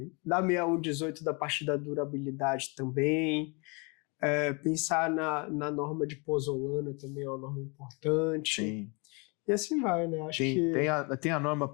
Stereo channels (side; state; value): right; quieter; 31.4 dB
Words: da 6118, da parte da durabilidade também. Pensar na norma de pozolana também é uma norma importante. Sim. E assim vai, né? Acho que... Tem a norma